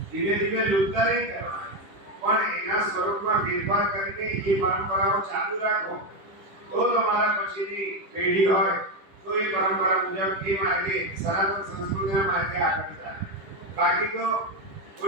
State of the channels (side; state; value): left; late; 10 ms